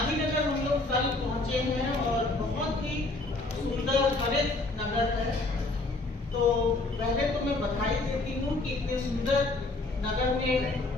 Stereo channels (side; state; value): right; quieter; 3.1 dB